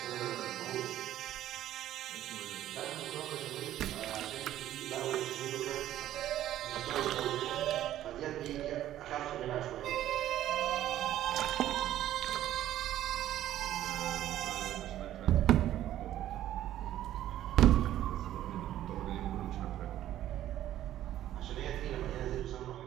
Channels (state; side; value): quieter; left; 12.7 dB